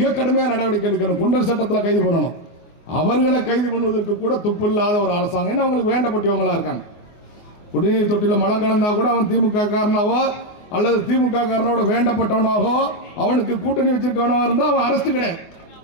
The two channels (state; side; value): late; right; 24 ms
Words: கடுமையான நடவடிக்கை எடுக்கணும். குண்டர் சட்டத்தில் கைது பண்ணணும். அவர்களை கைது பண்ணுவதற்கு கூட துப்பு இல்லாத ஒரு அரசாங்கம். ஏன்னா அவங்களுக்கு வேண்டப்பட்டவங்களா இருக்காங்க. குடிநீர் தொட்டில மலம் கலந்தா கூட அவன் திமுக காரனாவோ அல்லது திமுக காரனோட வேண்டப்பட்டவனாகோ அவனுக்கு கூட்டணி வச்சிருக்கவனாக இருந்தா அவன் அரெஸ்ட் கிடையாது.